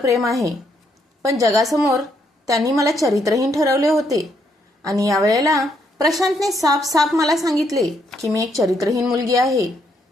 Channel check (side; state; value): both; normal; correlation 0.74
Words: आहे, पण जगासमोर त्यांनी मला चरित्रहीन ठरवले होते. आणि यावेळेला प्रशांतने साफ मला सांगितले की मी एक चरित्रहीन मुलगी आहे